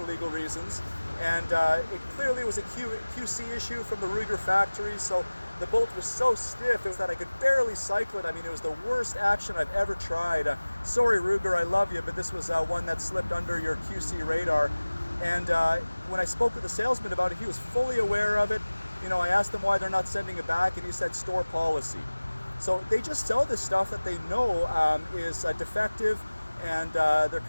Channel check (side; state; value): both; inverted; correlation -1.00